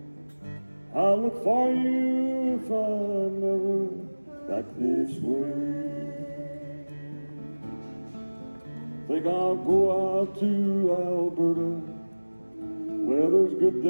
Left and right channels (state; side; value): inverted; both; correlation -1.00